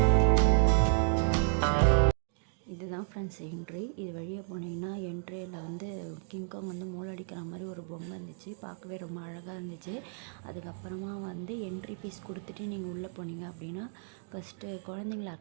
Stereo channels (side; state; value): left; silent; digital silence